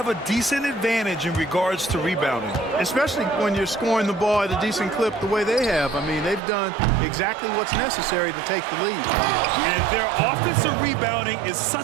a decent advantage in regards to rebounding. Especially when you're scoring the ball at a decent clip the way they have. I mean, they've done exactly what's necessary to take the lead. And their offensive rebounding is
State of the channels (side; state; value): left; drops out; at 6.4 s